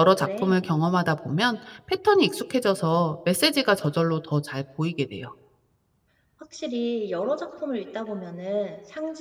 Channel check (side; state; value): both; identical; correlation 1.00